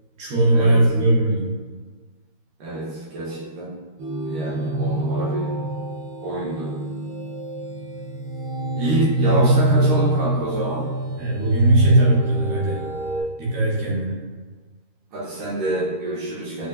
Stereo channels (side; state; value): left; late; 13 ms